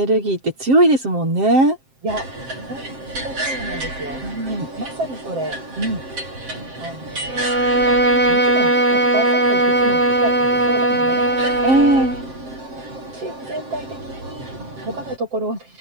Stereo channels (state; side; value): late; left; 7.6 ms